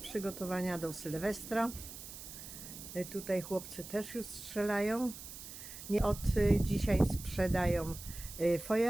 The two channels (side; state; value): right; noise; hiss, 12 dB below the sound